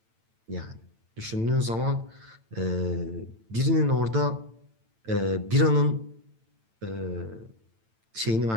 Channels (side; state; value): left; late; 9.0 ms